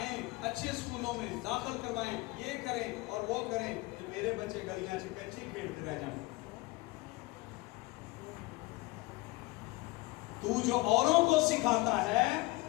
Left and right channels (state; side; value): quieter; right; 21.7 dB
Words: اچھے اسکولوں میں داخل کروائیں، یہ کریں اور وہ کریں، کہ میرے بچے گلیاں سے کنچی کھیلتے رہ جائیں. تو جو اوروں کو سکھاتا ہے